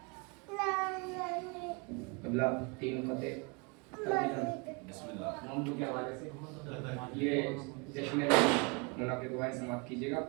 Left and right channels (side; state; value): left; quieter; 31.0 dB